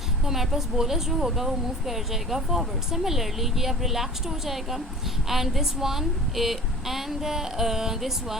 तो हमारे पास बोलस जो होगा वो मूव कर जाएगा फॉरवर्ड। सिमिलरली ये अब रिलैक्स्ड हो जाएगा and this one this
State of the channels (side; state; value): both; normal; correlation 0.41